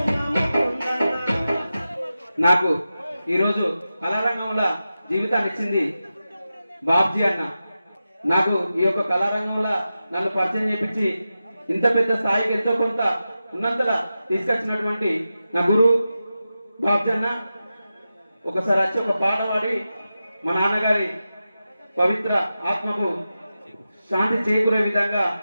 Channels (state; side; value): inverted; both; correlation -0.92